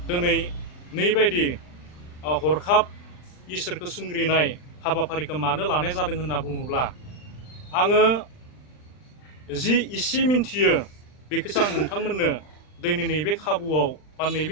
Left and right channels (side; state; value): right; late; 39 ms